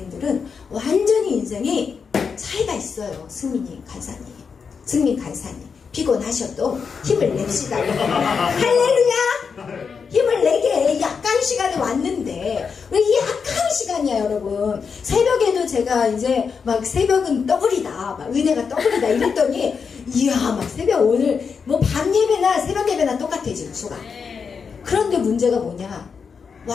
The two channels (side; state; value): right; quieter; 5.8 dB